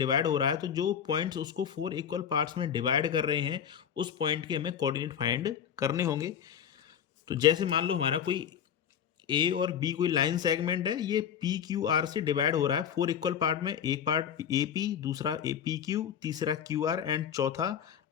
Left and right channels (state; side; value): quieter; right; 8.7 dB